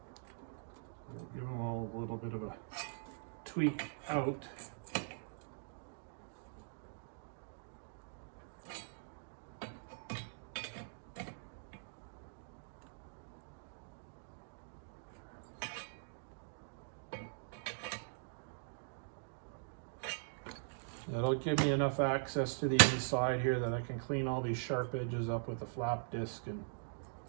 We'll give them all a little bit of a tweak out. That'll give me enough access to the inside here that I can clean all these sharp edges up with a flap disc and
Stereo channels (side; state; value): left; silent; digital silence